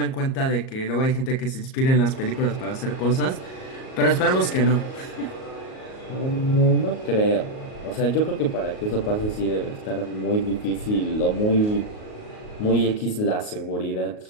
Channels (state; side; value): late; right; 38 ms